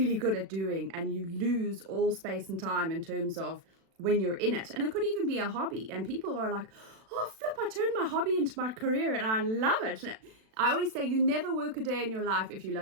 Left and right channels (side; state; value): left; late; 36 ms